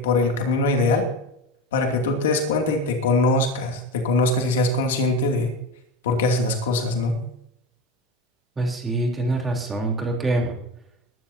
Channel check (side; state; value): both; normal; correlation 0.25